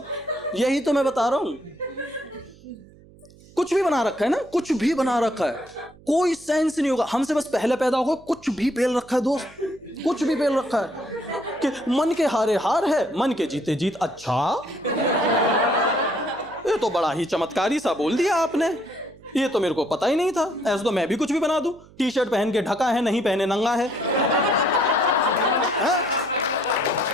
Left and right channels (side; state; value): right; noise; hum, 24 dB below the sound